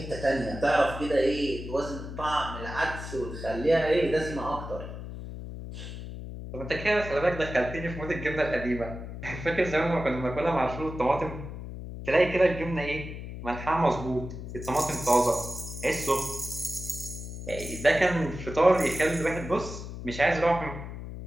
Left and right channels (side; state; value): left; noise; hum, 9 dB below the sound